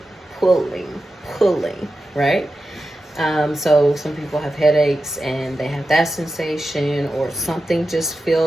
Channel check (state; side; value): normal; both; correlation 0.91